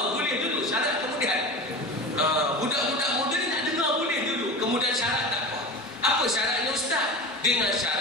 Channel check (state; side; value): normal; both; correlation 0.30